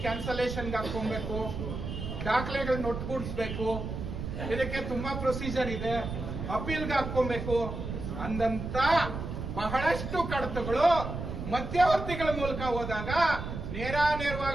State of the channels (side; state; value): right; noise; rumble, 6 dB below the sound